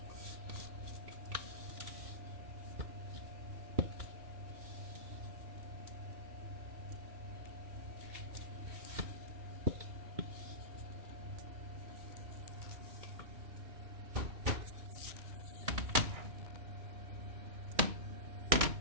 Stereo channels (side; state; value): left; late; 2.8 ms